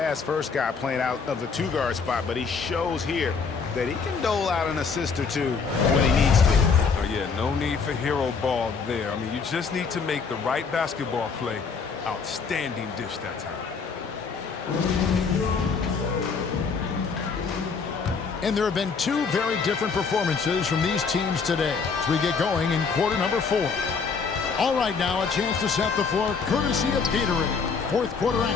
guy playing out of the two-guard spot, but he shows here that he can dole out an assist or two when he needs to. Oh, yeah, no need for hero ball there. I mean, you just need to make the right basketball play. Outstanding dish that time. And there have been two very different performances from these teams today as we get going in quarter number 4. All right, now a chance to set the floor courtesy of Gatorade. Fourth quarter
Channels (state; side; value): quieter; right; 5.3 dB